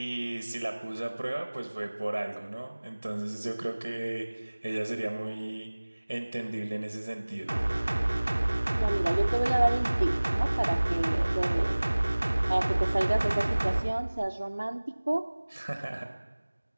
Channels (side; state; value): both; inverted; correlation -1.00